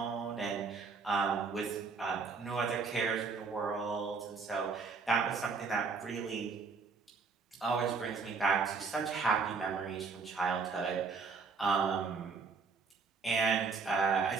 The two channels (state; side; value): quieter; left; 4.9 dB